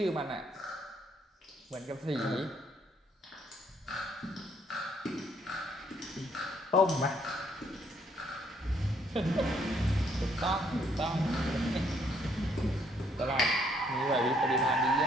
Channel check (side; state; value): both; normal; correlation 0.68